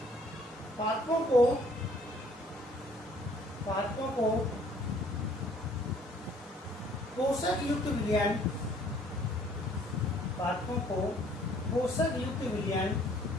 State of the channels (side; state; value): both; normal; correlation 0.59